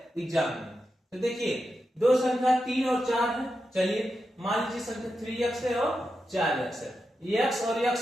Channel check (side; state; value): both; normal; correlation 0.88